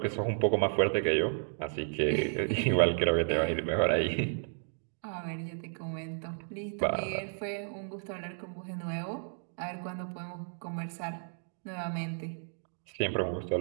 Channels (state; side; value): silent; left; digital silence